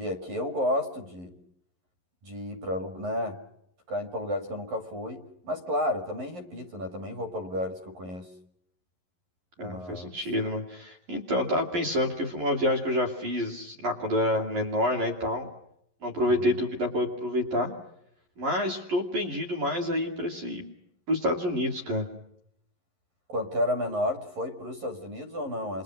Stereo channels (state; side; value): late; left; 11 ms